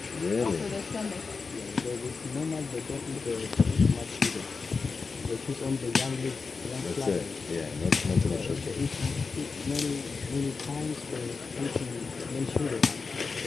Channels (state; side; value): quieter; right; 4.6 dB